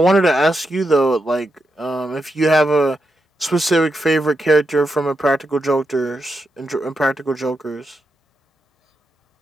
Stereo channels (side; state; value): both; normal; correlation 0.85